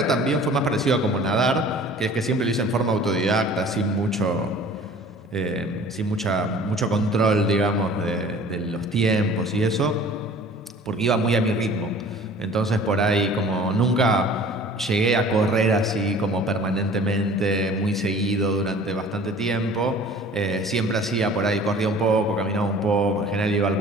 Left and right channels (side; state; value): both; normal; correlation 0.47